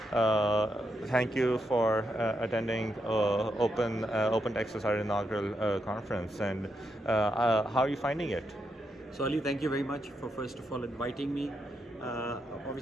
Thank you for attending Open Texas, our inaugural conference. And how are you finding it? So Ali, thank you very much for first of all inviting me.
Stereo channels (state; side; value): normal; both; correlation 0.82